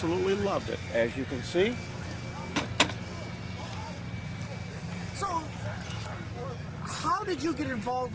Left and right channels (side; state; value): both; identical; correlation 1.00